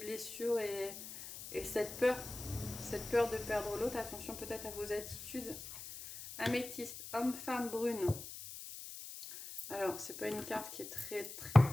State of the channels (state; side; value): noise; left; hiss, 11 dB below the sound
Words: et cette peur de perdre l'autre. Attention peut-être à vos attitudes. Améthyste, homme-femme brune. Alors, c'est pas une carte qui est très